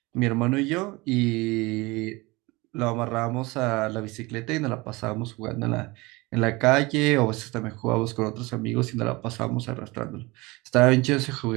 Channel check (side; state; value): left; quieter; 23.4 dB